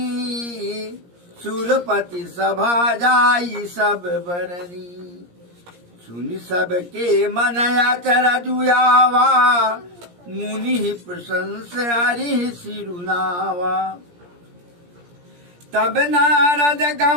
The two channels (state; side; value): late; left; 17 ms